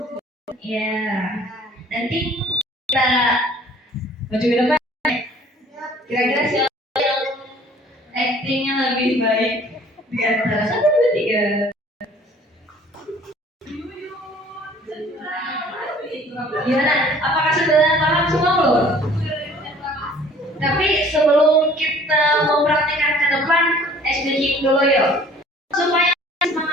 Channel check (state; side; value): normal; both; correlation 0.52